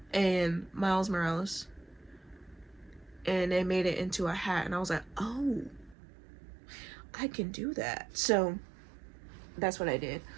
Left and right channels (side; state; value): left; drops out; at 6.0 s